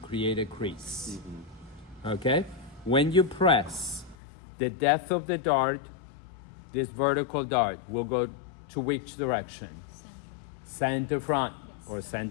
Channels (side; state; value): right; drops out; at 4.2 s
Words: a crease. Okay? When you press, the depth of the dart, this vertical dart, will go to which direction? Center front or